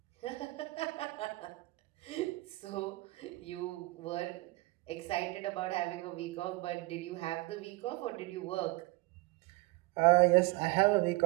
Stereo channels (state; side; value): quieter; left; 22.1 dB